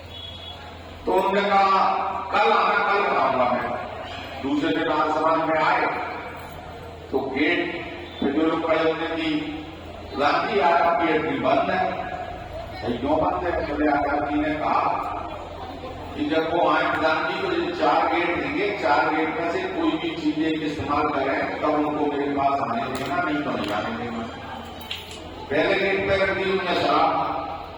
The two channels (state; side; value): identical; both; correlation 1.00